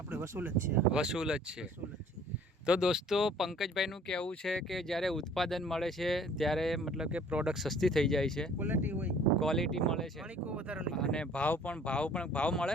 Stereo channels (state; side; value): normal; both; correlation 0.54